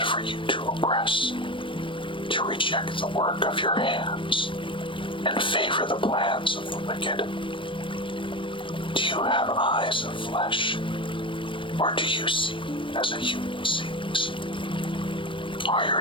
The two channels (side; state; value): right; late; 0.25 ms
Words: for you to oppress, to reject the work of your hands, and favor the plans of the wicked? Do you have eyes of flesh, or do you see as a human sees? Are